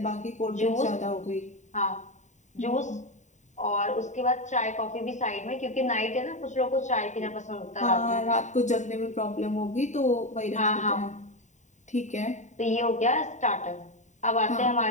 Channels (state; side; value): late; right; 0.34 ms